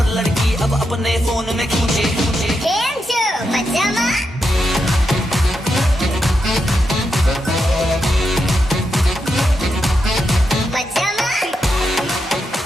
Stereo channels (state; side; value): normal; both; correlation 0.85